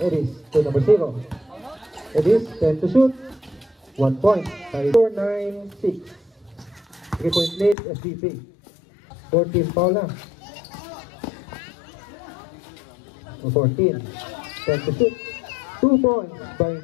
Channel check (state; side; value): drops out; right; at 7.8 s